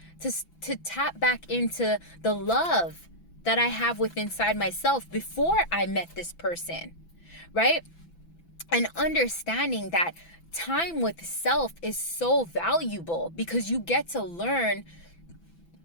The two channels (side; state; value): right; late; 6.0 ms